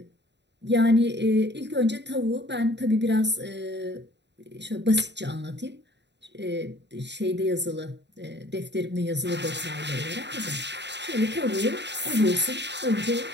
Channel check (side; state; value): left; late; 0.51 ms